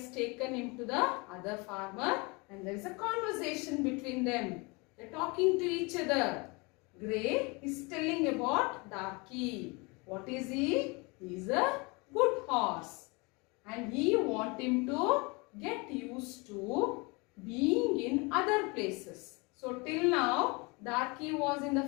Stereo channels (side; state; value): right; quieter; 28.1 dB